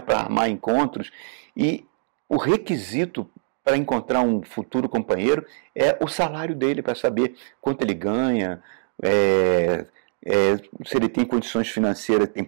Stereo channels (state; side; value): silent; left; digital silence